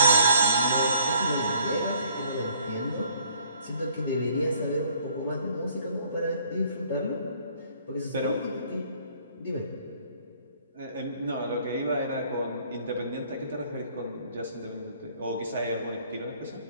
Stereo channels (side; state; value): both; inverted; correlation -0.60